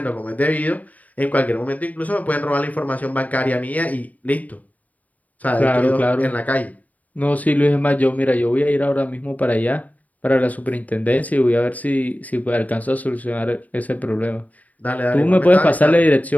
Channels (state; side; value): late; right; 0.074 ms